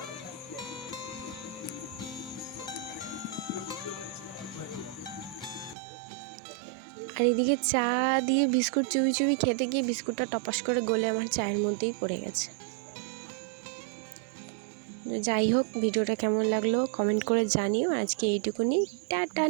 আর এদিকে চা দিয়ে বিস্কুট চুবি চুবি খেতে গিয়ে বিস্কুটটা টপাস করে গলে আমার চায়ের মধ্যেই পড়ে গেছে। যাই হোক, ভিডিওটা কেমন লাগলো কমেন্ট করে জানিও। আজকে এইটুকুনি, টাটা,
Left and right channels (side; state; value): left; drops out; at 5.8 s